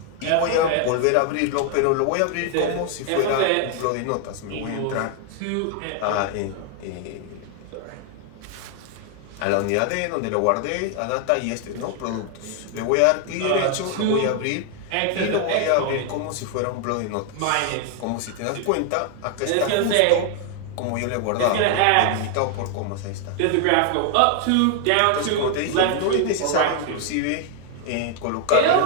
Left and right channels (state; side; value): different; both; correlation 0.00